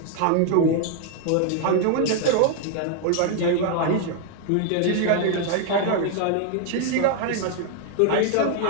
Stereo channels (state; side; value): different; both; correlation 0.00